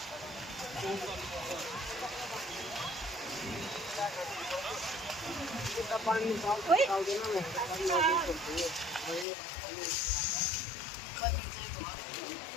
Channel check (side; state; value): right; drops out; at 9.2 s